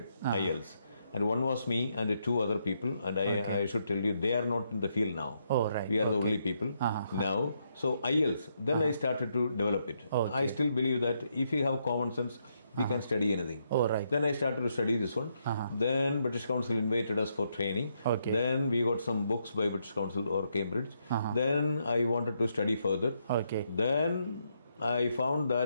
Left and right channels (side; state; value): both; inverted; correlation -0.78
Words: IELTS. And one was me and 2 other people. And I should tell you, they are not in the field now. Oh, right. We are the only people now. So IELTS, then I started to develop it. I still believe that if you have common sense, we can study anything. Oh, right. Then I started to study this one. Then British Council invited us for training. Okay. Then we got some books by British Council or Cambridge. Then I wanted to study further. Okay. Then I found